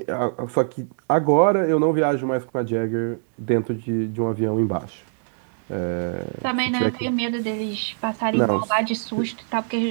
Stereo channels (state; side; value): silent; left; digital silence